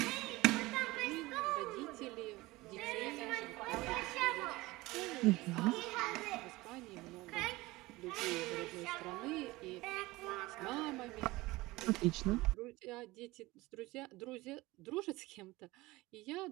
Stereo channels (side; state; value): left; quieter; 20.4 dB